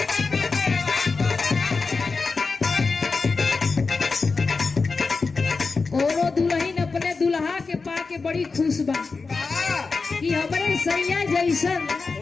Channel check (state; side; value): quieter; right; 4.3 dB